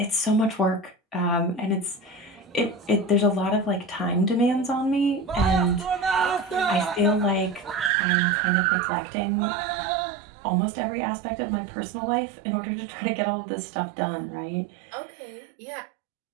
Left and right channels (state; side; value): drops out; left; at 7.9 s